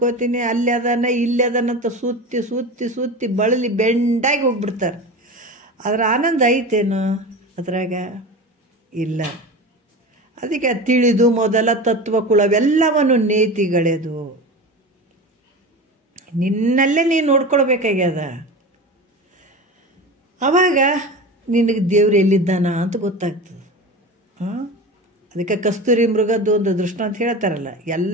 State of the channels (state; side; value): normal; both; correlation 0.29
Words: ಅಲ್ಲಿ ಅದಾನ ಇಲ್ಲಿ ಅದಾನಂತ ಸುತ್ತಿ ಸುತ್ತಿ ಸುತ್ತಿ ಬಳಲಿ ಬೆಂಡಾಗಿ ಹೋಗ್ಬಿಡ್ತಾರೆ. ಅದರ ಆನಂದ ಐತೇನು ಅದ್ರಾಗ? ಇಲ್ಲ. ಅದಕ್ಕೆ ತಿಳಿದು ಮೊದಲ ತತ್ವಕುಳವೆಲ್ಲವನ್ನು ನೇತಿಗಳೆದು ನಿನ್ನಲ್ಲೇ ನೀನು ನೋಡ್ಕೊಳ್ಬೇಕಾಗ್ಯದ. ಆವಾಗ ನಿನಗೆ ದೇವ್ರು ಎಲ್ಲಿದ್ದಾನ ಅಂತ ಗೊತ್ತಾಗ್ತದೆ. ಅದಕ್ಕೆ ಕಸ್ತೂರಿ ಮೃಗದ್ದು ಒಂದು ದೃಷ್ಟಾಂತ ಹೇಳ್ತಾರಲ್ಲ,